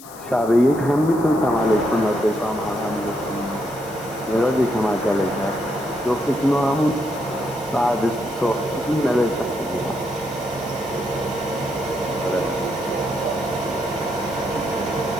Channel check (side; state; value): left; noise; hiss, 18 dB below the sound